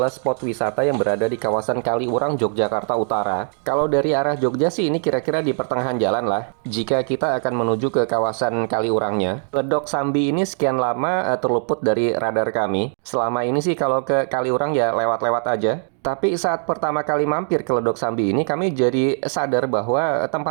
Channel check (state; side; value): silent; left; 60 dB below the other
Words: spot wisata yang berada di kawasan Kaliurang, Yogyakarta Utara. Kalau dari arah Jogja sih ini kira-kira di pertengahan jalan lah. Jika kita akan menuju ke kawasan Kaliurangnya. Ledok Sambi ini sekian lama terluput dari radar kami. Selama ini sih kalau ke Kaliurang ya lewat-lewat aja. Tapi saat pertama kali mampir ke Ledok Sambi ini, kami jadi sadar bahwa